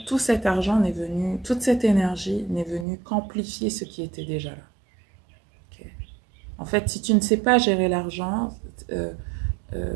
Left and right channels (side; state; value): left; drops out; at 2.9 s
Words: tout cet argent n'est venu, toute cette énergie n'est venue qu'amplifier ce qui était déjà là. Okay. En fait, si tu ne sais pas gérer l'argent,